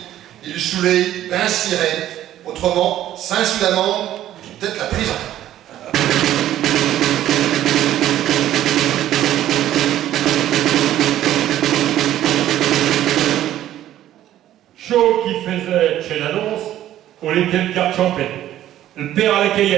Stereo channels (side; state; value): left; quieter; 12.7 dB